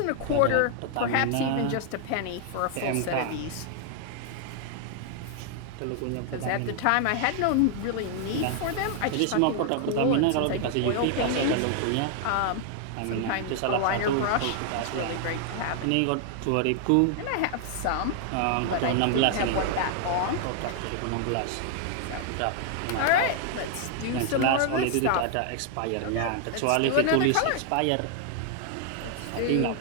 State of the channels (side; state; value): both; different; correlation 0.00